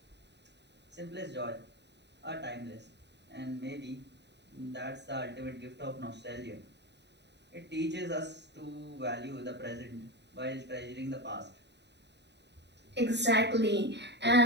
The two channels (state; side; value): late; left; 0.50 ms